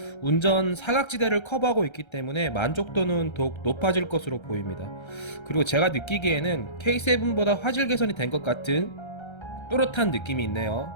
운전 사각지대를 커버하고 있기 때문에 만족도는 더욱 높아질 것으로 보입니다. 그리고 제가 느끼기에는 K7보다 화질 개선이 된 것 같은 또렷한 느낌이 있네요.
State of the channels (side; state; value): right; late; 1.3 ms